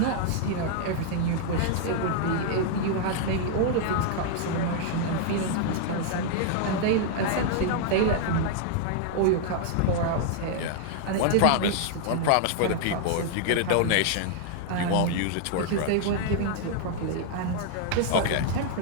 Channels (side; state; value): both; different; correlation 0.00